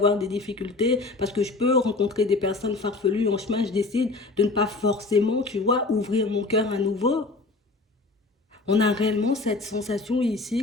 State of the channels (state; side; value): quieter; right; 3.5 dB